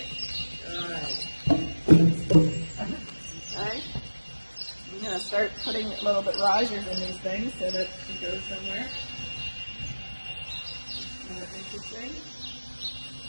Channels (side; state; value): both; inverted; correlation -1.00